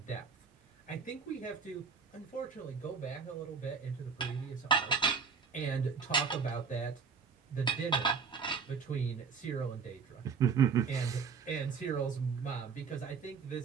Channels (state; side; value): quieter; left; 5.7 dB